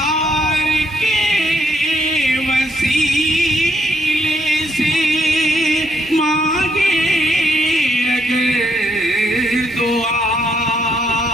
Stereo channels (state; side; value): normal; both; correlation 0.74